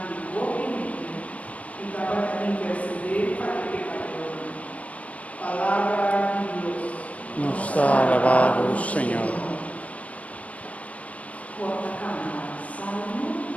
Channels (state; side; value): late; right; 0.066 ms